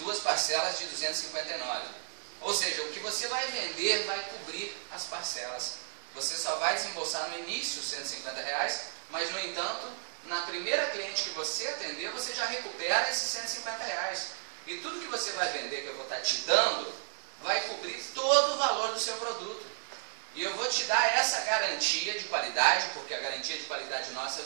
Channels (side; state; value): left; silent; digital silence